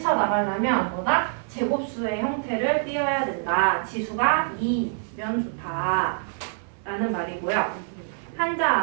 뭐다? 제곱수의 형태를 띄어야 된다. 지수가 2면 좋다 라는 말이고요. 한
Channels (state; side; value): silent; left; 61 dB below the other